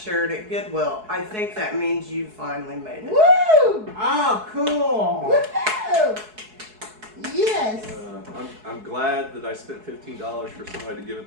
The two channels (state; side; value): late; left; 4.7 ms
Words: at Goodwill. I think that means you finally made it. Woo! Oh, cool! Woohoo! Yes. I'm glad that I spent $15 for somebody to give it